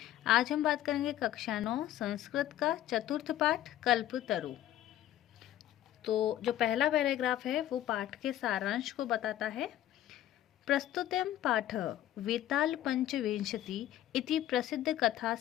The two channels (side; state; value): right; quieter; 12.6 dB